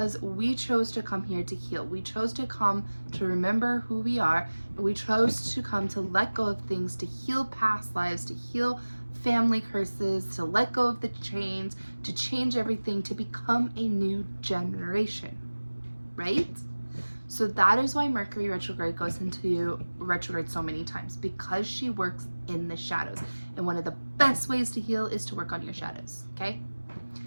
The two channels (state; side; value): inverted; both; correlation -1.00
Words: we chose to come here to heal. We chose to come to remember who we are. We chose to come to let go of things, to heal past lives, to heal family curses, to let go of the chains, to change everything, to become a new generation, right? So that is why Mercury retrograde goes into retrograde so many times, because she works in the shadows. And one of the best ways to heal is to work on your shadows, okay?